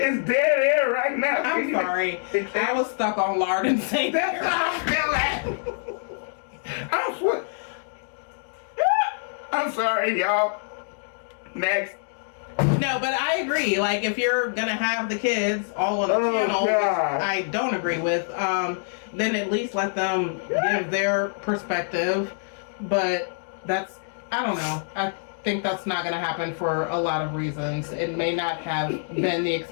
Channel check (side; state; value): right; silent; digital silence